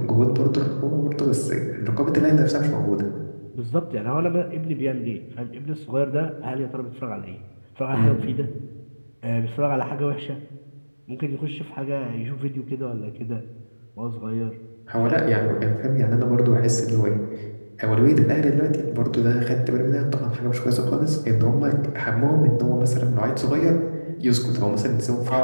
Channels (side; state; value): both; inverted; correlation -1.00